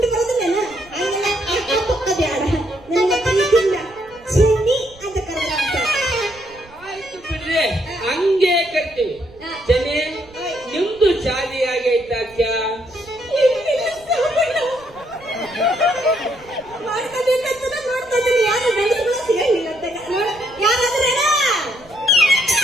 ಬರೋದಿಲ್ಲೇನ ಹಂಗೆಲ್ಲ ಅಕ್ಕ ಬ್ಯಾಡ ನನಗೆ ಪ್ರೀತಿಯಿಂದ ಚಿನ್ನಿ ಅಂತ ಕರೆದ್ರ ಅಂತ. ಆಯ್ತು ಬಿಡ್ರಿ, ಹಂಗೆ ಕರ್ತೀವಿ. ಜನೇ ನಿಮ್ದು ಶಾದಿ ಆಗೈತಾಕ್ಯ? ಮಾಡ್ಕೋಬೇಕಂತ ನೋಡ್ತಾ ಇದ್ದೀನಿ. ಯಾರು ಗಂಡಸರು ಸಿಗಂಗಿಲ್ಲ ಅಂತ ಯಾರಾದ್ರೆ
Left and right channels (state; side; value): noise; right; rumble, 25 dB below the sound